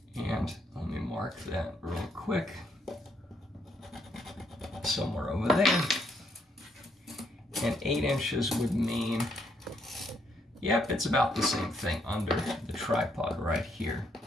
And let me mark that real quick. Somewhere over there. And 8 inches would mean, yep, it's about the same thing under the tripod right here.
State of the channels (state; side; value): normal; both; correlation 0.73